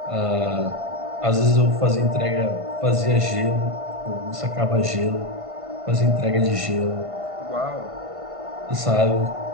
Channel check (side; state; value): left; late; 1.5 ms